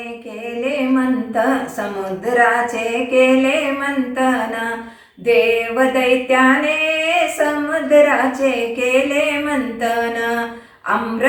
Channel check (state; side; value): identical; both; correlation 1.00